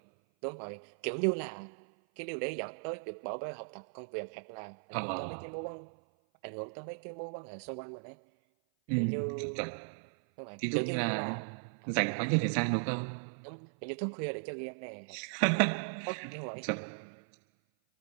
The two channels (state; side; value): silent; left; 53 dB below the other